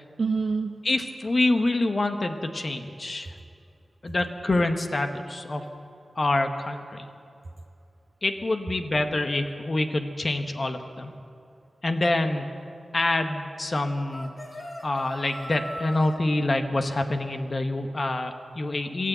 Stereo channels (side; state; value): both; normal; correlation 0.96